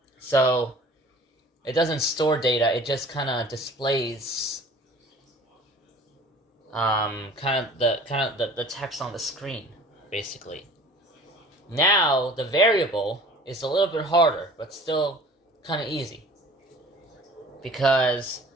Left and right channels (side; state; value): both; normal; correlation 0.47